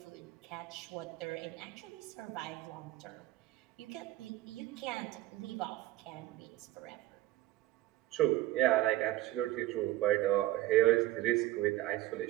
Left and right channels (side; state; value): left; quieter; 15.8 dB